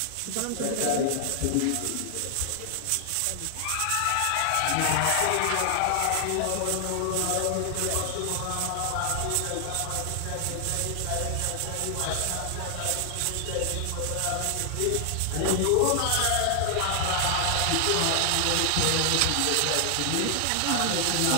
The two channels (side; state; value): both; different; correlation 0.00